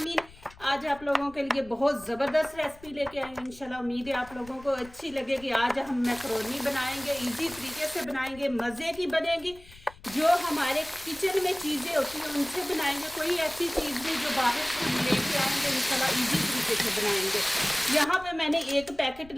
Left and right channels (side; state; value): left; noise; rumble, 22 dB below the sound